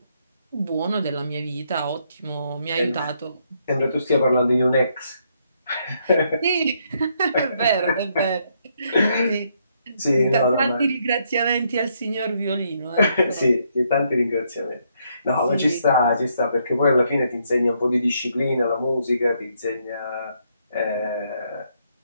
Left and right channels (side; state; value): both; inverted; correlation -0.74